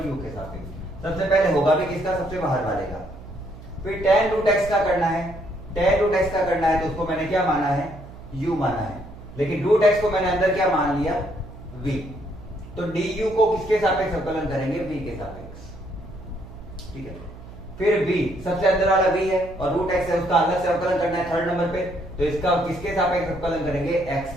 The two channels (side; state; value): right; noise; hum, 16 dB below the sound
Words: के सापेक्ष। सबसे पहले होगा भी किसका, सबसे बाहर वाले का। फिर tan रूट एक्स का करना है, tan रूट एक्स का करना है तो उसको मैंने क्या माना है u माना है, लेकिन रूट एक्स को मैंने अंदर क्या मान लिया v, तो du को किसके सापेक्ष अवकलन करेंगे v के सापेक्ष। ठीक है, फिर v सबसे अंदर वाला v है और रूट एक्स है, उसका अलग से अवकलन करना है थर्ड नंबर पे, तो इसका किसके सापेक्ष अवकलन करेंगे